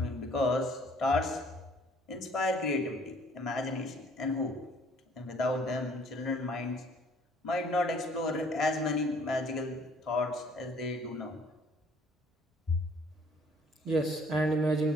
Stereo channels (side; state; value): both; normal; correlation 0.58